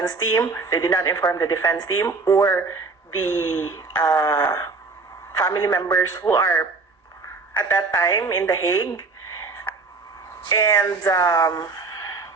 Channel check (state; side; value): quieter; left; 4.0 dB